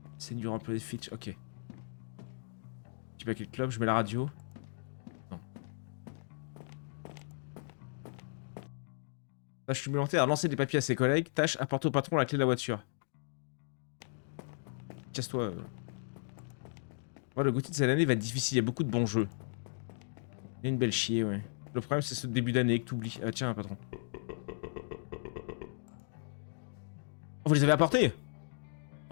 C'est du employé Fitch. Ok. Tu mets quel club? Je mets la radio. Non. Tâche supplémentaire à lancer des papiers à ses collègues. Tâche apporter au patron la clé de la voiture. Casse-toi. Ouais, le Gauthier de cette année va être difficile. Il y a beaucoup de bons jeux. Il y a une belle chier, ouais. Le problème, c'est ce début d'année que t'oublies. Ah, tiens, patron. Oh, vous les avez apportés?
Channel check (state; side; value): silent; right; digital silence